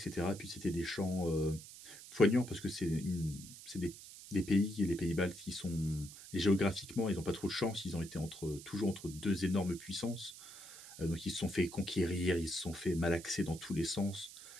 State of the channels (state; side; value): noise; right; hiss, 15 dB below the sound